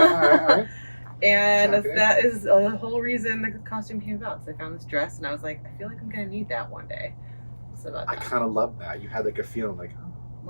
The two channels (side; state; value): both; inverted; correlation -1.00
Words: right. And Okay. that is the whole reason the costume came about. So I found this dress and I was like, I feel like I'm going to need that one day. So about I that. kind of love that. You had like a feeling like,